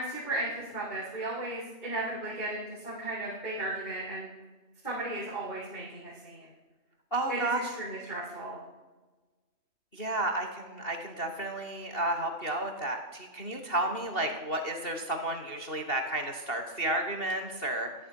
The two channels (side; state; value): right; late; 2.7 ms